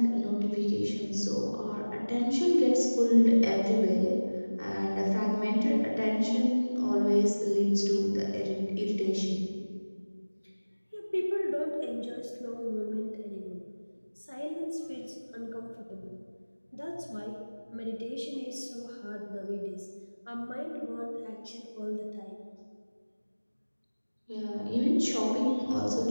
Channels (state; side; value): inverted; both; correlation -1.00